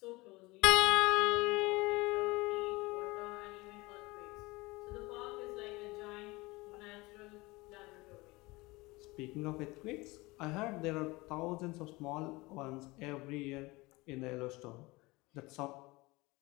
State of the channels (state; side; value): quieter; right; 22.6 dB